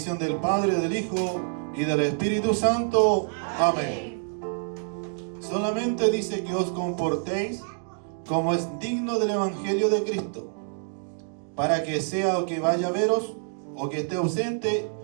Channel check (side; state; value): left; silent; digital silence